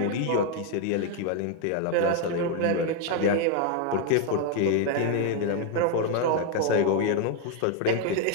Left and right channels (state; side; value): different; both; correlation 0.01